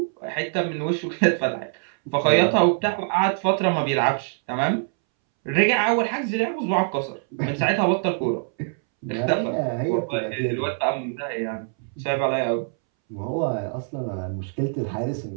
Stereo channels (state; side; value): silent; left; 63 dB below the other